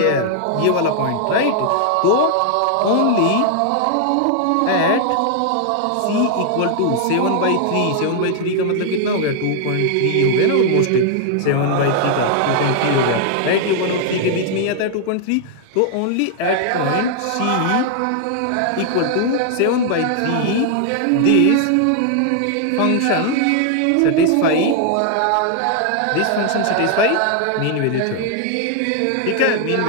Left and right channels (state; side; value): different; both; correlation 0.00